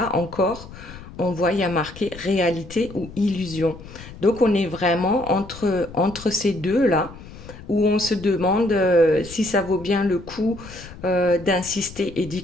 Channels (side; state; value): left; noise; rumble, 16 dB below the sound